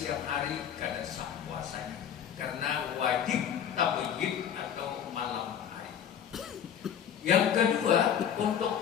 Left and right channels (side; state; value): right; quieter; 8.9 dB